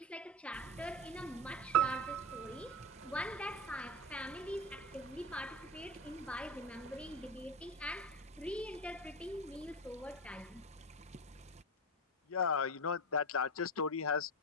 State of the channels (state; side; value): normal; both; correlation 0.23